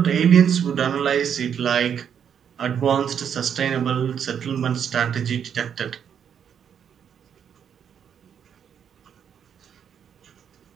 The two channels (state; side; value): quieter; left; 8.1 dB